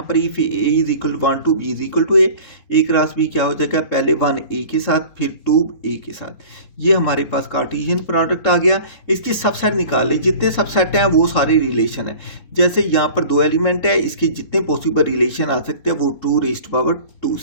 पर if a is equal 1 to b is equal to a cross b क्या हो जाएगा, पहले 1 a के साथ फिर 2 a के साथ। ये हमारे पास कार्टेशियन प्रोडक्ट आ गया। इसकी सबसेट निकाल ली, जितने सबसेट हैं वो सारे रिलेशन है। जैसे यहाँ पर 2 एलिमेंट है, इसके जितने पॉसिबल रिलेशन आ सकते हैं वो 2 raised to power 2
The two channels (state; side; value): late; right; 3.7 ms